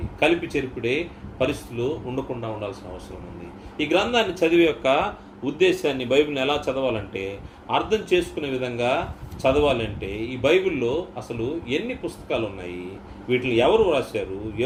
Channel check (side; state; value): both; identical; correlation 1.00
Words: కలిపి చెరిపిడే పరిస్థితులు ఉండకుండా ఉండాల్సిన అవసరం ఉంది. ఈ గ్రంథాన్ని చదివే యొక్క ఉద్దేశాన్ని, బైబిల్ని ఎలా చదవాలంటే, అర్థం చేసుకునే విధంగా చదవాలంటే, ఈ బైబిల్లో అసలు ఎన్ని పుస్తకాలు ఉన్నాయి, వీటిని ఎవరు రాశారు,